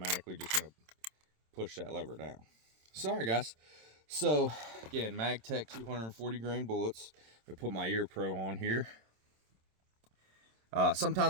just going to push that lever down. Sorry, guys. So again, MagTech 240 grain bullets. I put my Ear Pro on here.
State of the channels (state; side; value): late; left; 26 ms